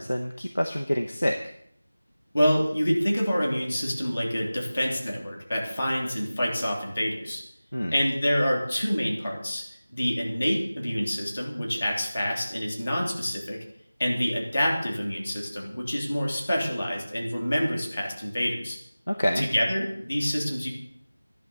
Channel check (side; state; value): both; inverted; correlation -0.97